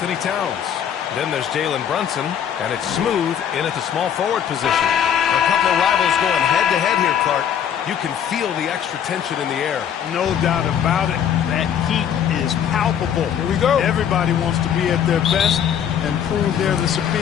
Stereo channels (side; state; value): right; quieter; 8.9 dB